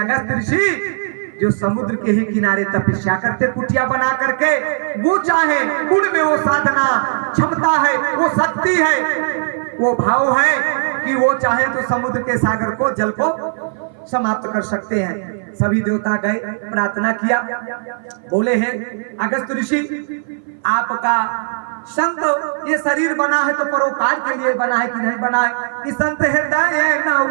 अगस्त ऋषि जो समुद्र के ही किनारे तपस्या करते कुटिया बना करके, वो चाहे गुण में वो साधना क्षमता है, वो शक्ति है, वो भाव है कि वो चाहे तो समुद्र के सागर को जल को समाप्त कर सकते हैं। सभी देवता गए, प्रार्थना किया, बोले हैं अगस्त ऋषि आपका संत ये शरीर बना है तो परोपकार के लिए बना है कि नहीं बना है? कि संत हृदय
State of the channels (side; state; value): left; silent; 57 dB below the other